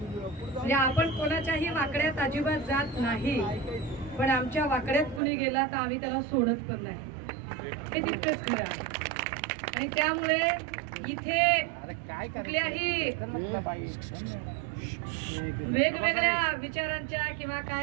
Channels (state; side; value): drops out; left; at 5.2 s